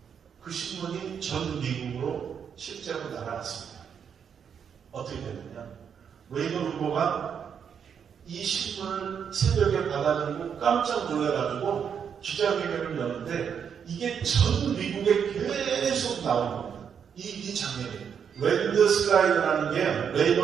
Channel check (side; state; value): left; quieter; 7.5 dB